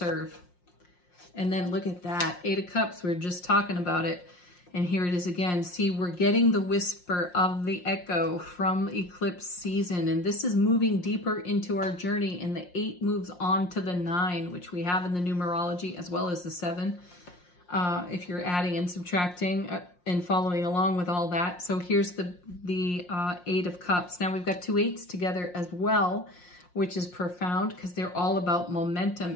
And then look at that, 8 of Cups. We were just talking about it. And here it is again. See, we're getting the whisper of the echo from eclipse season. And this is moving deeper into our journey. And the 8 moves on to the 9, which we have in the numerology, as well as the 7. If you're adding and subtracting and following along with all that. So here's the 8 of Cups. Now we've got 2 8s together as well, which is profound because they're all about momentum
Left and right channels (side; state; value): right; late; 5.6 ms